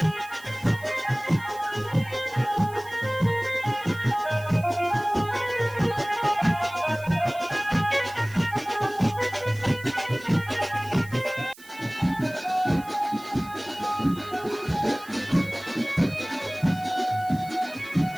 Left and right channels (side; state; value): right; noise; hiss, 21 dB below the sound